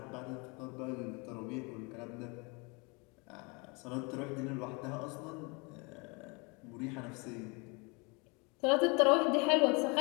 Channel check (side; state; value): right; quieter; 30.3 dB